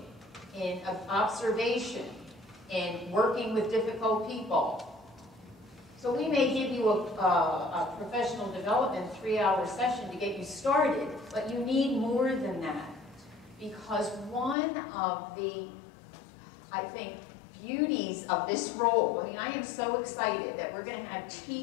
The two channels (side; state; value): right; drops out; at 14.6 s